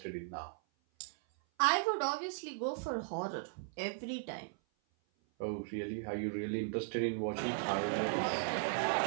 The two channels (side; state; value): left; silent; 53 dB below the other